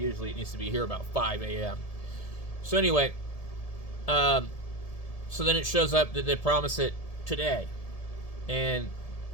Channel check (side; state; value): right; late; 1.7 ms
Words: it needs to be here about 5 a.m. So anyway, so then it shows up that they promise it today, and